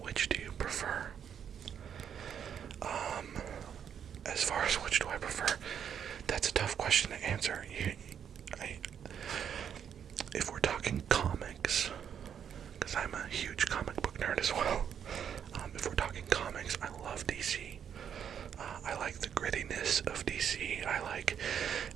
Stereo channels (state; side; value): quieter; left; 8.4 dB